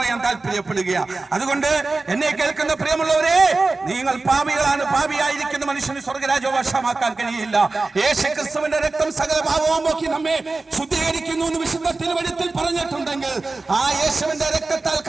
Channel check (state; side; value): quieter; left; 3.5 dB